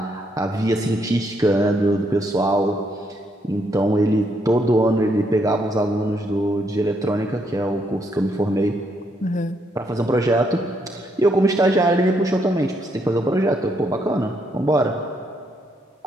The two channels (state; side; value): normal; both; correlation 0.75